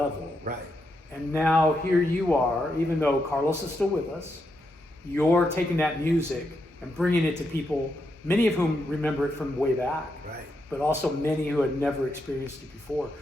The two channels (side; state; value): both; normal; correlation 0.82